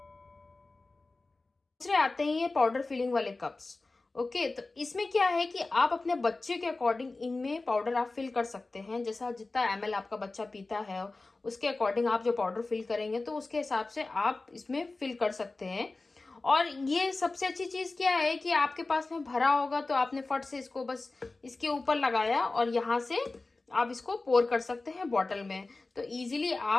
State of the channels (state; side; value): quieter; right; 3.4 dB